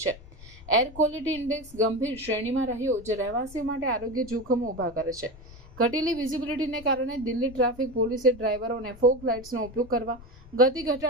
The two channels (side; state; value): left; noise; rumble, 19 dB below the sound